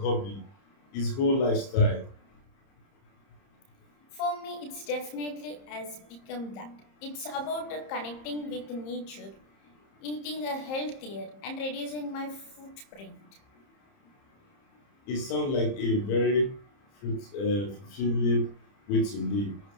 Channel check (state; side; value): late; right; 30 ms